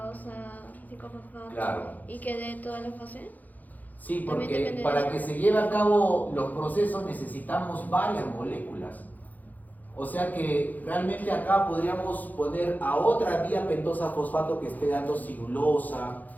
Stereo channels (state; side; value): late; right; 0.082 ms